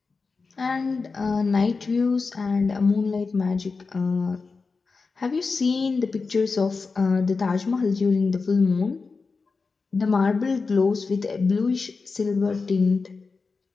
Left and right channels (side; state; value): right; quieter; 4.4 dB